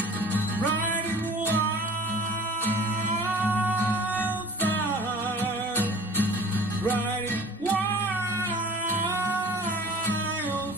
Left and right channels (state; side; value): normal; both; correlation 0.44